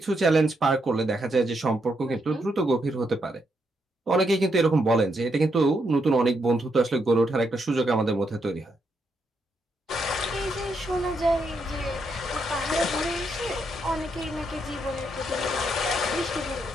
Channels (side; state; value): both; normal; correlation 0.79